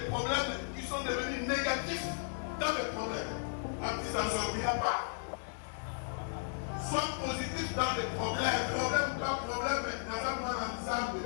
problèmes qui sont devenus négatifs dans les problèmes. Après, ça ne sortira pas. Sois positif dans les problèmes. Problème ou pas problème, dans un monde ensemble.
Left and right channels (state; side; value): silent; right; digital silence